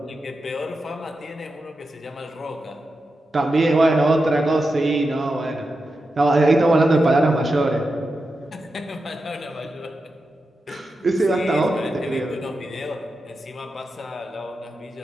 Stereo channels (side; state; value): both; normal; correlation 0.89